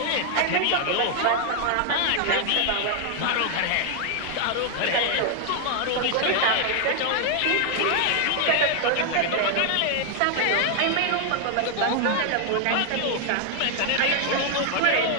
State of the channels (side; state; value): both; different; correlation 0.00